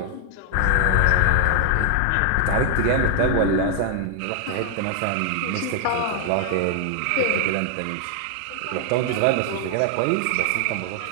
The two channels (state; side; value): different; both; correlation 0.00